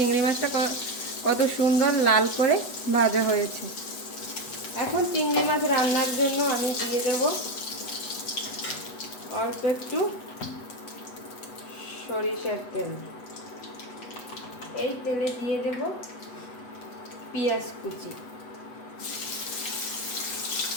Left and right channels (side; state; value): right; late; 8.1 ms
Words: মাছটা কত সুন্দর লাল করে ভাজা হয়েছে। এখন চিংড়ি মাছ রান্নার জন্য আমি দিয়ে দেব অল্প একটু সরিষার তেল। এই তেলে দিয়ে দেব পেঁয়াজ কুচি।